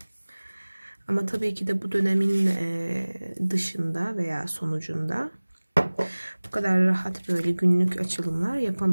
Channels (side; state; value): both; inverted; correlation -1.00